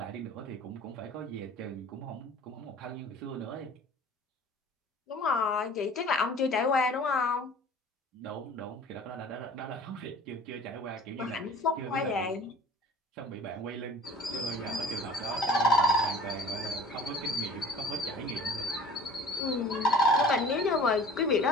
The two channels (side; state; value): both; normal; correlation 0.45